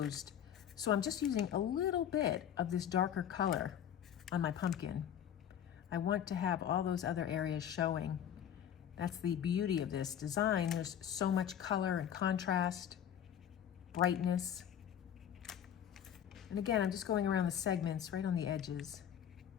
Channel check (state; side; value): quieter; right; 9.5 dB